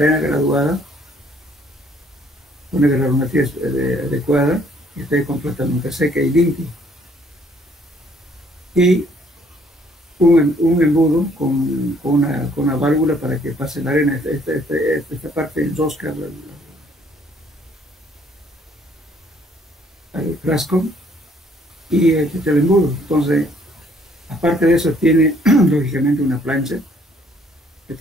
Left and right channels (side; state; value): both; normal; correlation 0.63